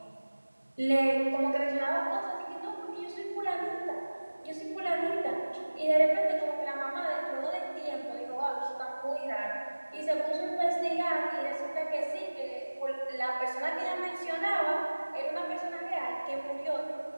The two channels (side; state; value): both; inverted; correlation -1.00